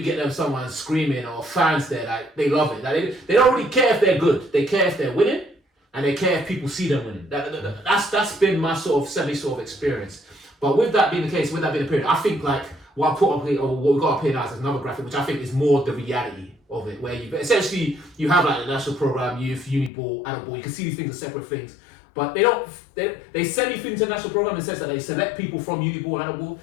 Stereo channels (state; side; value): drops out; right; at 19.9 s